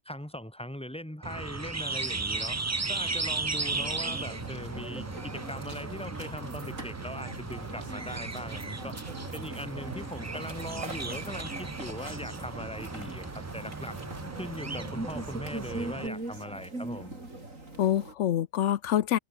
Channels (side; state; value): both; normal; correlation 0.07